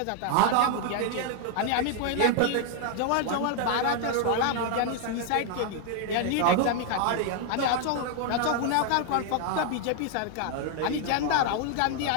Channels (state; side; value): different; both; correlation 0.00